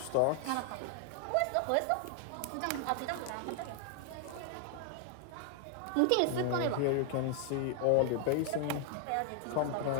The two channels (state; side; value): different; both; correlation 0.00